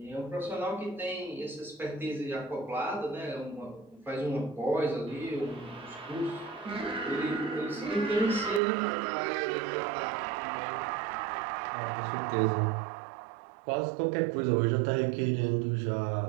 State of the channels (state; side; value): drops out; left; at 8.6 s